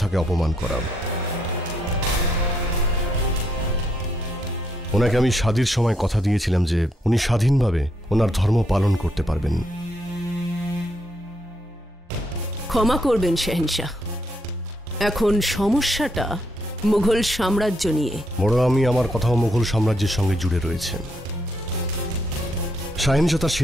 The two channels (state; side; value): normal; both; correlation 0.76